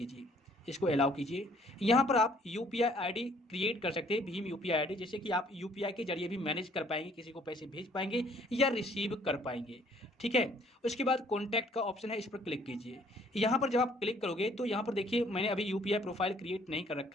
इसको अलाउ कीजिए। यहाँ पर आप यूपीआई आईडी क्रिएट कर सकते हैं, भीम यूपीआई आईडी, जैसे कि आप यूपीआई के जरिए भी मैनेज कर पाएंगे, किसी को पैसे भेज पाएंगे या रिसीव कर पाएंगे। ठीक है, उसके बाद कॉन्टैक्ट का ऑप्शन है, इस पर क्लिक कीजिए। यहाँ पर जब आप क्लिक करोगे तो यहाँ पर देखिए मैंने अभी यूपीआई प्रोफाइल क्रिएट नहीं कर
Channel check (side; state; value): both; normal; correlation 0.61